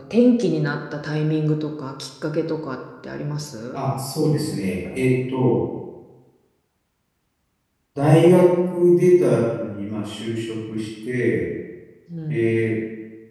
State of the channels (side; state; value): both; identical; correlation 1.00